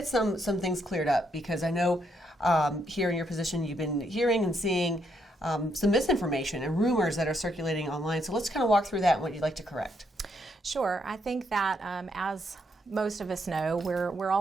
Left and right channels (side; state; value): both; normal; correlation 0.76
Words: some things cleared up, because I know here in your position you've been hearing and seeing some misinformation and rumors that are circulating online. So let's kind of walk through that and what you'd like to correct. Sure. I think that as most of us know, we're